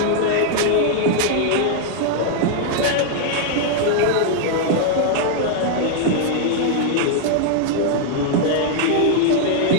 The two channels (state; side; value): different; both; correlation -0.01